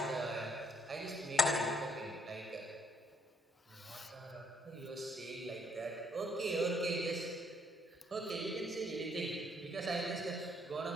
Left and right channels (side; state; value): both; normal; correlation 0.68